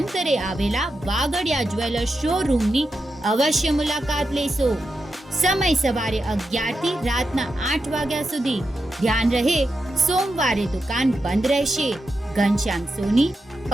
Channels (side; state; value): both; normal; correlation 0.87